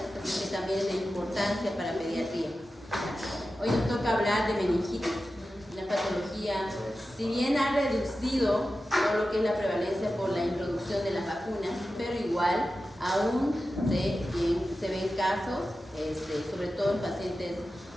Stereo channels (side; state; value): both; normal; correlation 0.93